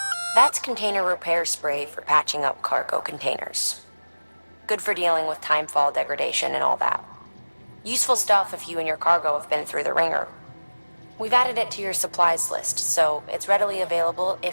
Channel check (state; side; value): inverted; both; correlation -1.00